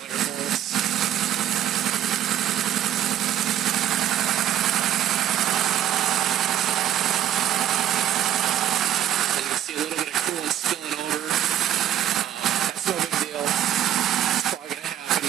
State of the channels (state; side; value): quieter; left; 11.2 dB